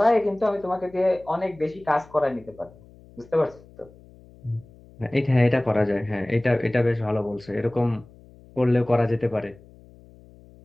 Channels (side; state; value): left; noise; hum, 24 dB below the sound